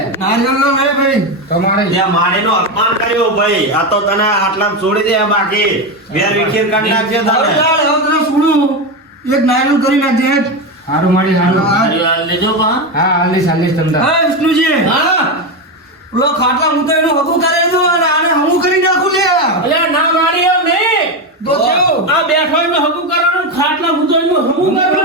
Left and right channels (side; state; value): both; normal; correlation 0.13